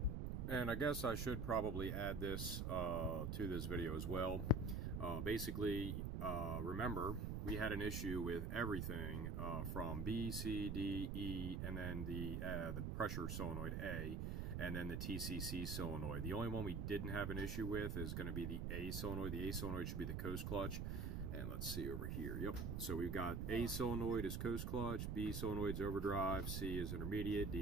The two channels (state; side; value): noise; right; rumble, 1 dB below the sound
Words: And I guess I should probably add this to this video as well. Basically, remember, we had an issue with everything from B, C, D, E, and then the pressure solenoid A. and then the TCC solenoid. The only one we didn't have an issue with is going to be the A solenoid. The A solenoid should be the coast clutch. And let's see over here. Yep. So we've got A solenoid is coast clutch, B solenoid is overdrive, C is intermediate,